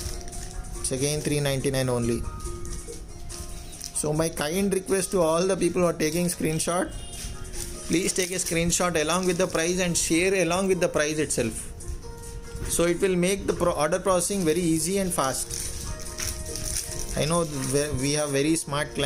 It's again $399 only. So my kind request to all the people who are taking screenshot, please take a screenshot along with the price and share along with the price itself. So it will make the order processing very easy and fast. I know we have very smart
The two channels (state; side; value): identical; both; correlation 1.00